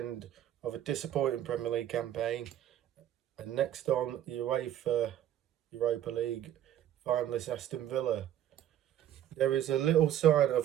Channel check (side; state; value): left; quieter; 11.2 dB